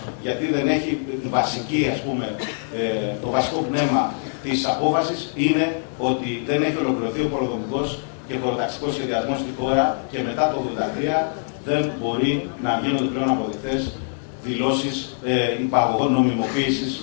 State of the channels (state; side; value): silent; right; digital silence